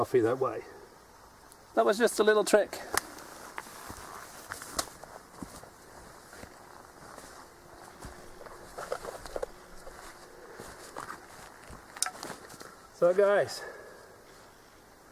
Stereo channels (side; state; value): both; identical; correlation 1.00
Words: that way. That was just a little trick. So guys,